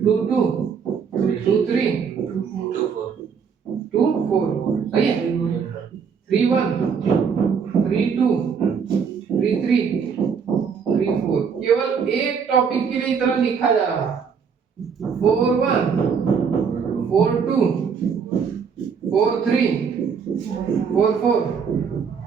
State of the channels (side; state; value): left; quieter; 6.4 dB